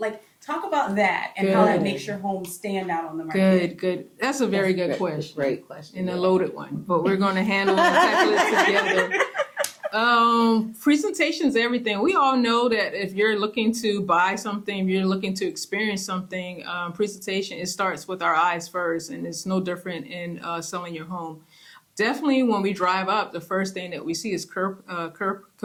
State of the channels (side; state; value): both; identical; correlation 1.00